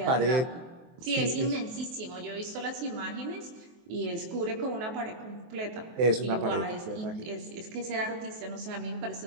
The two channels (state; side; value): late; left; 23 ms